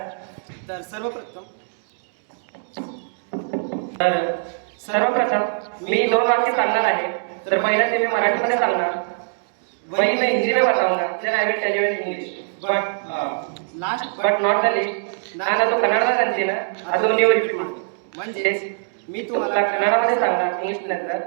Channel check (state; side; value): silent; left; digital silence